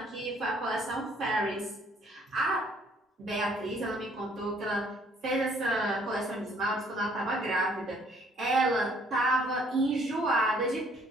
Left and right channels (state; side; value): normal; both; correlation 0.61